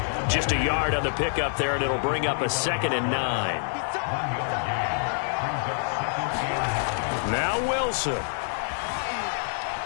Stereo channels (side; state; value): right; silent; digital silence